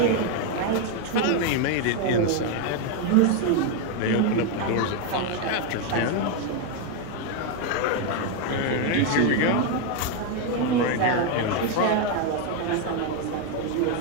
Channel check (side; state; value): both; different; correlation 0.01